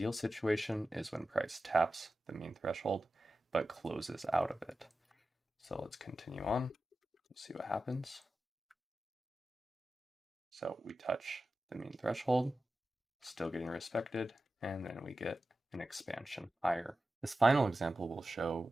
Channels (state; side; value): normal; both; correlation 0.94